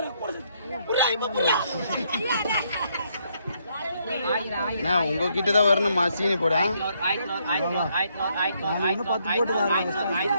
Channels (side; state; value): both; inverted; correlation -0.73